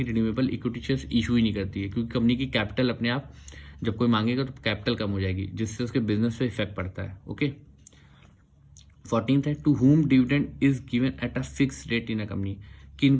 renewable equity shares issue ही नहीं करती है, क्योंकि कंपनी की कैपिटल अपने आप जब कोई मांगेगा तो कैपिटल कम हो जाएगी जिससे उसके बिजनेस पे इफेक्ट पड़ता है, ओके। 14th है to whom dividend is given at a fix rate in a company,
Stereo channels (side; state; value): both; identical; correlation 1.00